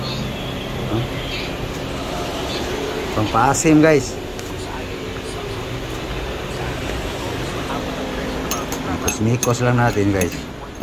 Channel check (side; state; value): both; identical; correlation 1.00